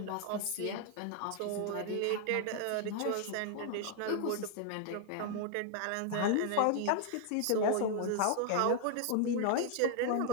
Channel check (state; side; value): different; both; correlation 0.00